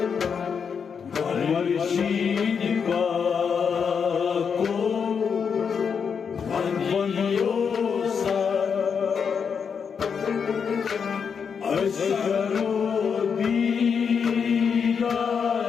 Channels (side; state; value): right; quieter; 6.5 dB